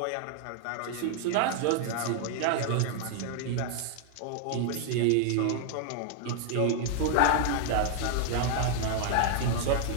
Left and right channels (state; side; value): different; both; correlation 0.00